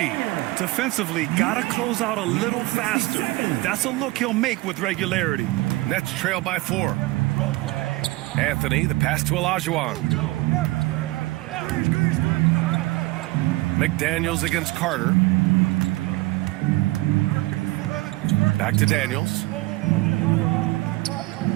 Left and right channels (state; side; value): quieter; left; 20.5 dB